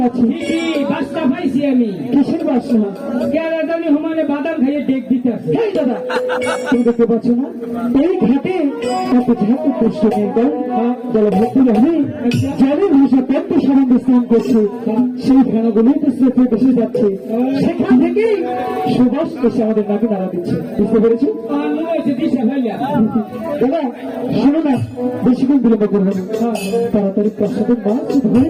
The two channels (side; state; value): both; identical; correlation 1.00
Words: গেছি। বাসটা পাইছি আমি। কিসের বাসা? কেরাদানি হমানে বাদাম খাইয়ে ডেক দিতে আসে। দাদা তুমি দেখতে পাচ্ছ না এই ঘাটে এত ঝাঁকু কষ্ট নেই জলভর্তি রহে জলের ভাষা পদ্ম সম্বন্ধে স্নান করছে, সেই ফেনাগুলোই তো স্রোতে ভেসে যাচ্ছে, সেখান থেকে সুবাস এসে আমাদের নাকে নাড়া দিচ্ছে। বুঝতে পেরেছো দাদা? শোনো না, বেশিক্ষণ বিলম্ব করবো না, তাড়াতাড়ি প্রসাদের মাছ ধরে